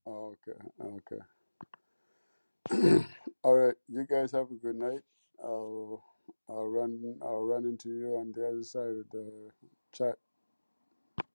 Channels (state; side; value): inverted; both; correlation -1.00